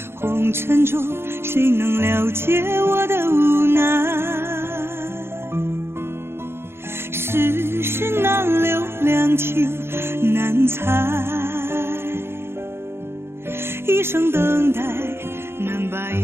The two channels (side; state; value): left; late; 0.12 ms